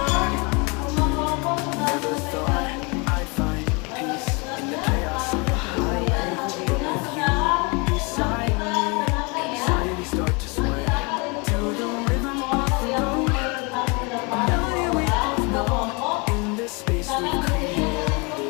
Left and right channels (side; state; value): right; quieter; 30.0 dB